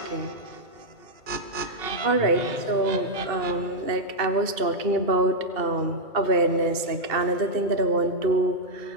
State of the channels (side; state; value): left; late; 2.6 ms